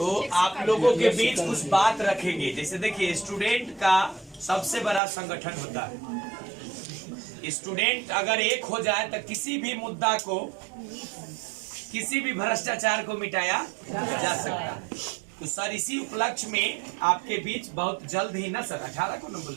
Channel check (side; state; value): left; drops out; at 5.0 s